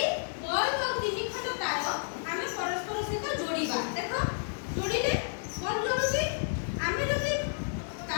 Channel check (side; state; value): right; silent; 56 dB below the other